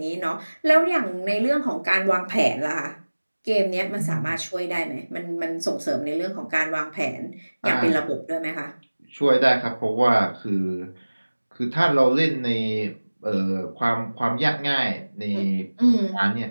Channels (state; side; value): inverted; both; correlation -1.00